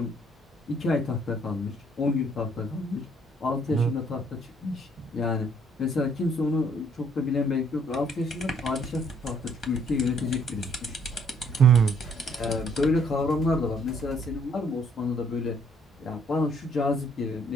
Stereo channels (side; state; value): both; normal; correlation 0.65